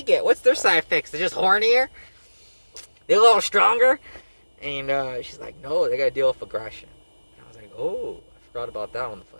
get? What's their side effects? They're just hornier? They're a little stronger? And she's like, no, they gotta deal with aggression. And I was like, oh, I forgot about that on the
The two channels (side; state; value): both; inverted; correlation -1.00